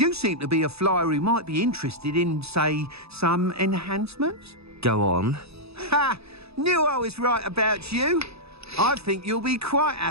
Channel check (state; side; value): late; left; 0.78 ms